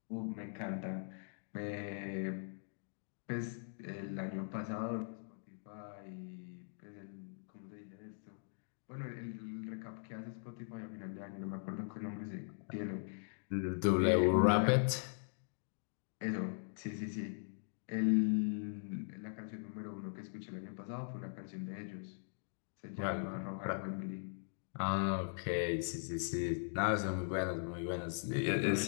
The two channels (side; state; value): right; silent; digital silence